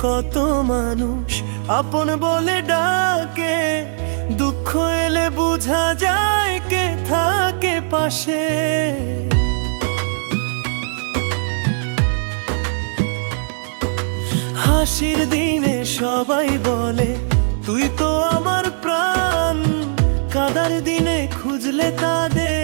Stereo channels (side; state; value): left; silent; 66 dB below the other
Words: কত মানুষ আপন বলে ডাকে, দুঃখ এলে বোঝা যায় কে থাকে পাশে। হাসির দিনে সবাই বলে তুই তো আমার প্রাণ, কাদার দিনে খুঁজলে